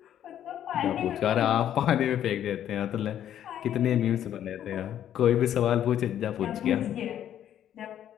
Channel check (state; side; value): quieter; right; 10.7 dB